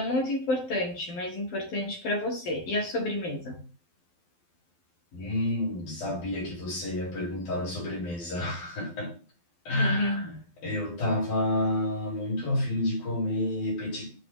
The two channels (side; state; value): right; late; 12 ms